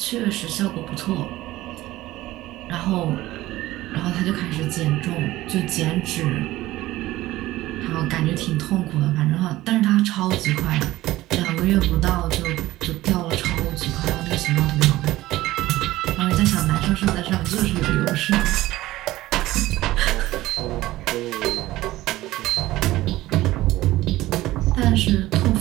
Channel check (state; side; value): quieter; left; 16.7 dB